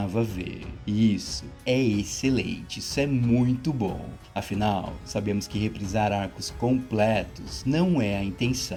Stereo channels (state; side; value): identical; both; correlation 1.00